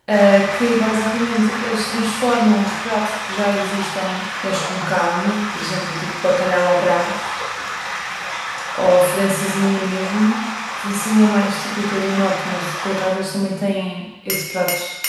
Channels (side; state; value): both; identical; correlation 1.00